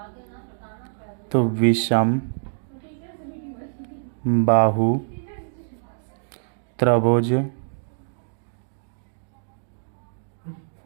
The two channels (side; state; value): left; silent; digital silence